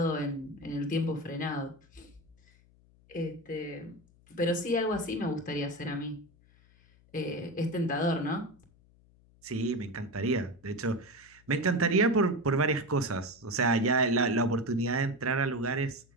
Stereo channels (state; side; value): noise; left; hum, 29 dB below the sound